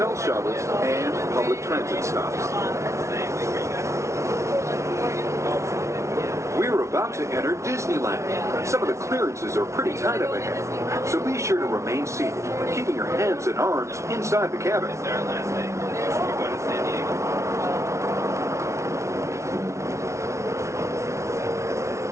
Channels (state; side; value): late; left; 0.14 ms